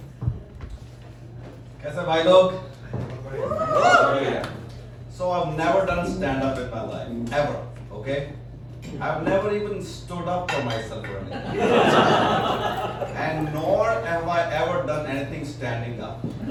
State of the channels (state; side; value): identical; both; correlation 1.00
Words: कैसे भाई लोग? So I've never done stand-up in my life, ever, okay? I've never even stood up for myself or anything. And nor have I ever done anything standing up.